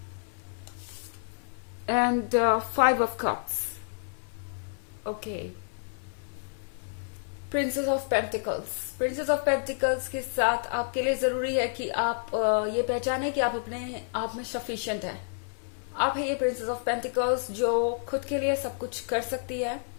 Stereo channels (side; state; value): right; silent; 58 dB below the other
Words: and 5 of Cups. Okay. Princess of pentacles. Princess of pentacles के साथ आपके लिए जरूरी है कि आप ये पहचाने कि आप अपने आप में सफिशिएंट है। आप है ये प्रिंसेस ऑफ पेंटिकल्स जो खुद के लिए सब कुछ कर सकती है